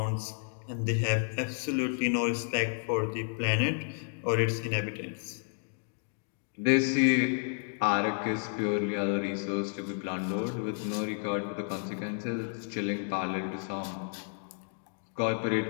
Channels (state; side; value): silent; right; 57 dB below the other